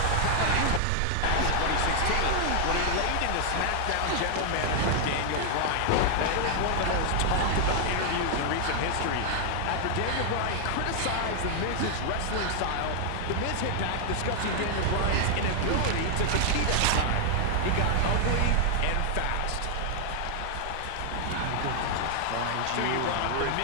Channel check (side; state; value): both; different; correlation 0.00